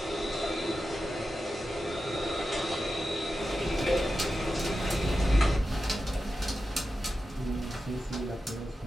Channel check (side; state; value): both; normal; correlation 0.91